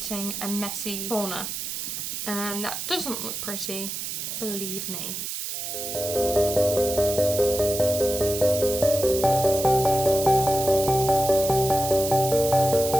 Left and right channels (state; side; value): noise; right; hiss, 5 dB below the sound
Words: a messy corner, and that doesn't look pretty, believe me.